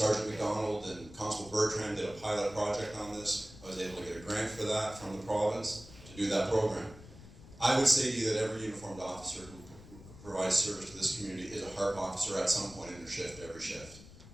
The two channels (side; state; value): left; noise; rumble, 18 dB below the sound